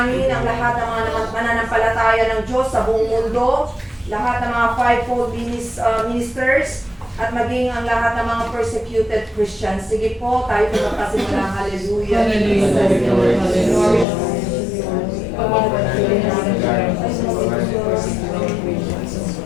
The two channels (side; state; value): right; drops out; at 14.1 s